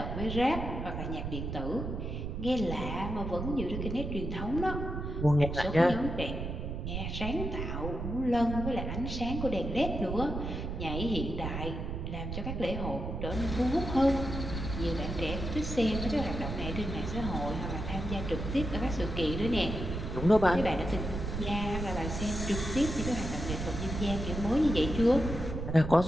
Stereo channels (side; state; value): right; noise; rumble, 5 dB below the sound